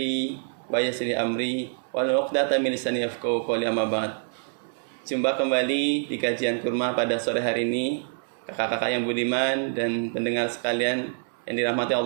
wa yassir li amri wahlul 'uqdatam min lisani yafqahu qawli, amma ba'd. Jumpa kembali di kajian kurma pada sore hari ini, kakak-kakak yang budiman dan pendengar sekalian yang dirahmati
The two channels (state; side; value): silent; left; 61 dB below the other